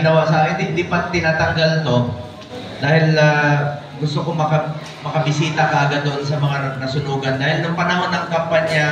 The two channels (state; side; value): identical; both; correlation 1.00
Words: sa akin, hindi pa tinatanggal to. Dahil gusto ko makabisita kaagad doon sa mga nasunugan. Dahil nung panahon ng